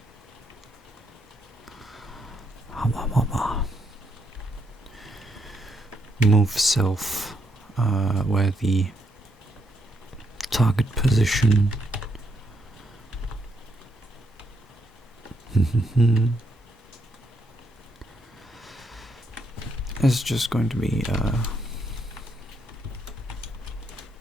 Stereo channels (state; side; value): normal; both; correlation 0.77